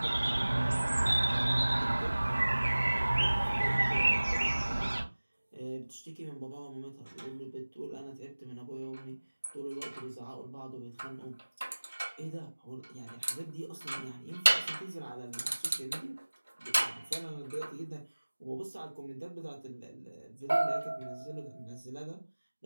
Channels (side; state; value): both; inverted; correlation -1.00